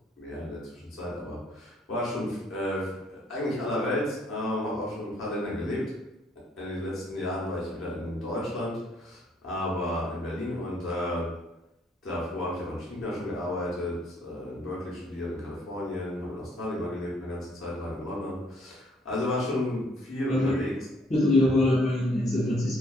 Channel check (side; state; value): both; normal; correlation 0.65